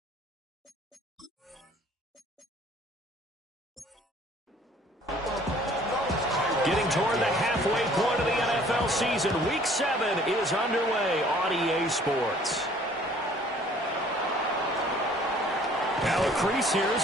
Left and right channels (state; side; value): normal; both; correlation 0.55